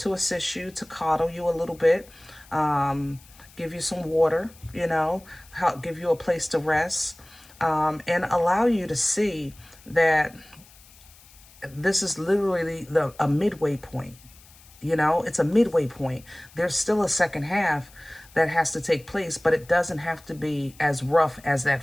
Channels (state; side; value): noise; left; hiss, 25 dB below the sound